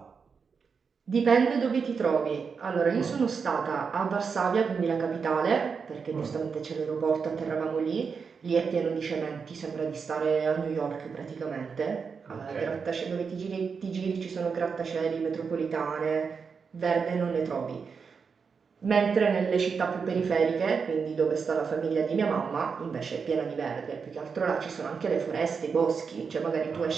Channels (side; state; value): left; quieter; 5.7 dB